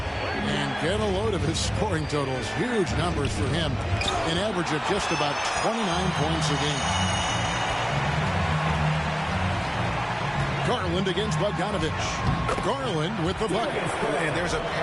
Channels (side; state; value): both; identical; correlation 1.00